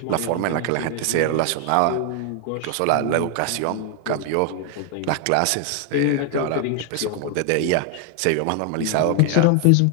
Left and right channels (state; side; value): different; both; correlation 0.00